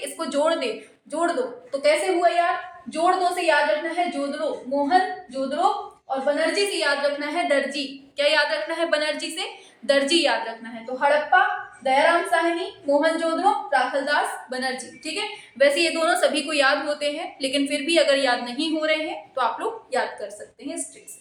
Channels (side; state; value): both; identical; correlation 1.00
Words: जोड़ दो। तो कैसे हुआ यार, जोड़ दो से याद रखना है जोदड़ो, मोहन जोदड़ो, और बनर्जी से याद रखना है दर्जी। क्या याद रखना है, बनर्जी से दर्जी याद रखना है। तो हड़प्पा दयाराम साहनी, मोहनजोदड़ो, राखलदास बनर्जी। ठीक है, वैसे ये दोनों सभी को याद होते हैं, लेकिन फिर भी अगर याद नहीं हो रहे हैं तो आप लोग याद कर सकते हैं इस ट्रिक